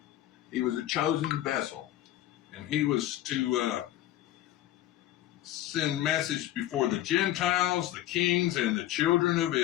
He was a chosen vessel, and he was to send message before the Gentiles, the kings, and the children of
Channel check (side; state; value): right; quieter; 13.8 dB